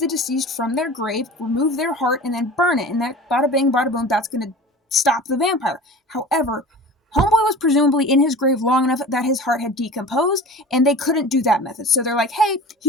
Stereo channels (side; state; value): both; normal; correlation 0.38